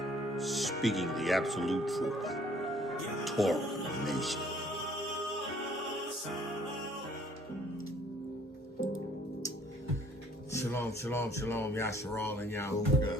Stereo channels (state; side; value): normal; both; correlation 0.59